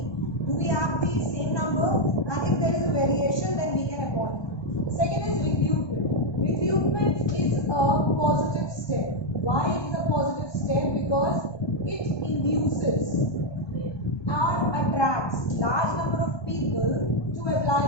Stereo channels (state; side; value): late; right; 1.2 ms